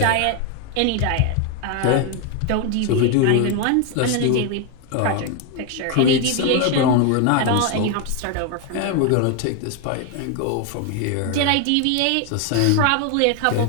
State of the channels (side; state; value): both; different; correlation 0.01